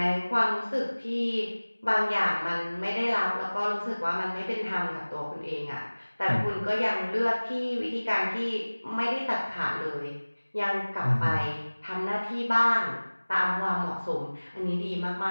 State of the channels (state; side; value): inverted; both; correlation -1.00